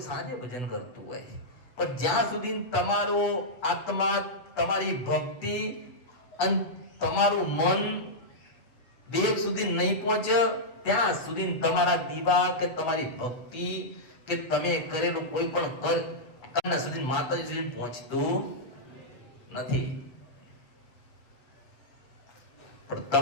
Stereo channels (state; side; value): late; right; 8.1 ms